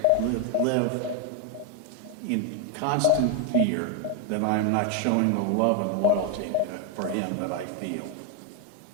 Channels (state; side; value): different; both; correlation 0.01